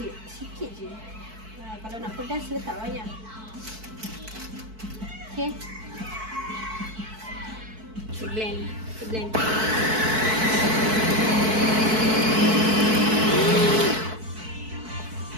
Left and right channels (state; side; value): late; left; 4.6 ms